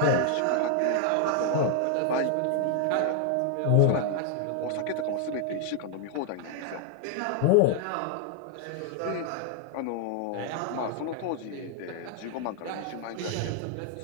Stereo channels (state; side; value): different; both; correlation 0.00